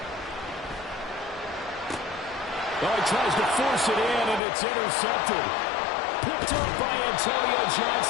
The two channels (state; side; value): drops out; right; at 4.4 s